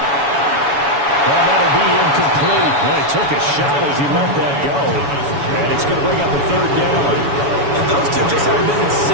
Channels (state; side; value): late; left; 7.1 ms